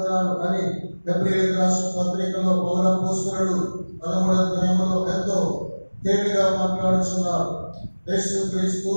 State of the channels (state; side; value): inverted; both; correlation -1.00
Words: అని హెబ్రీయులకు రాసిన పత్రికలో పౌరపోస్తలుడు 13వ అధ్యాయంలో ఎంతో తేలిగా మాట్లాడుతున్నారు. యేసు క్రీస్తు